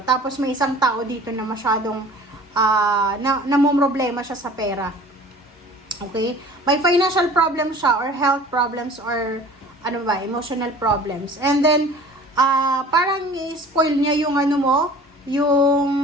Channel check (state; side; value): normal; both; correlation 0.46